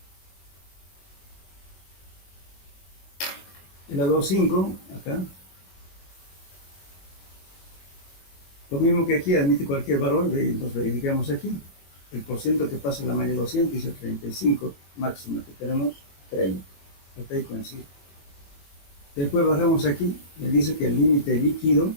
El a 2,5, acá, lo mismo que aquí, admite cualquier valor, nos verificamos aquí. El porcentaje que pasa en la malla 200 dice 35 máxima, que tenemos 30. Hasta ahí coincide. Después bajamos aquí, me dice que el límite líquido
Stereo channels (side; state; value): right; late; 22 ms